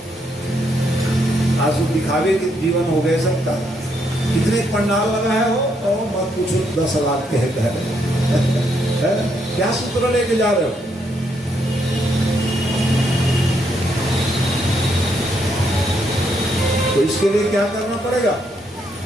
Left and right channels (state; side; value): normal; both; correlation 0.75